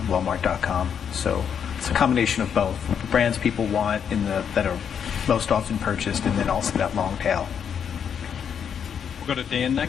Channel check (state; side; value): quieter; right; 7.8 dB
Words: Walmart.com. So it's a combination of both. The brands people want that are most often purchased, and then also that long tail. We'll go to Dan